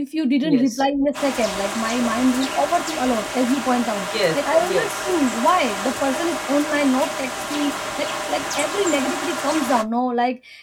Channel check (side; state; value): both; identical; correlation 1.00